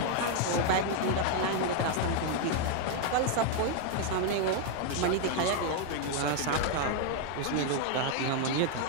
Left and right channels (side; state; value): both; different; correlation 0.00